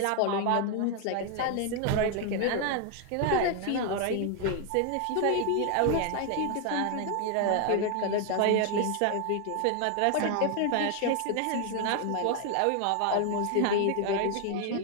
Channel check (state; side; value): different; both; correlation 0.00